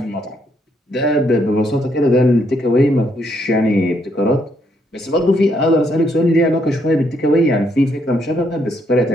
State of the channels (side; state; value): both; normal; correlation 0.73